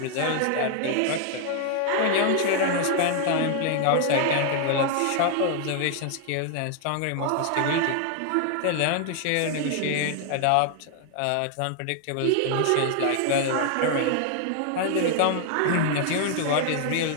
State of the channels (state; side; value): different; both; correlation 0.00